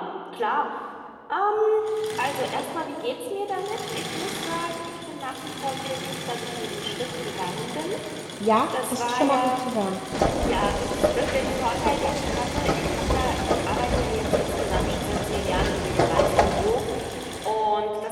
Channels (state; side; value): identical; both; correlation 1.00